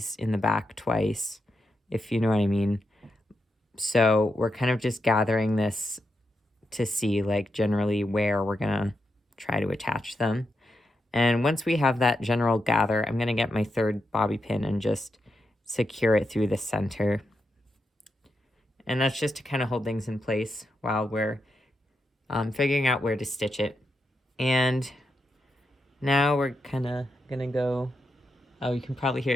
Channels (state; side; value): normal; both; correlation 0.85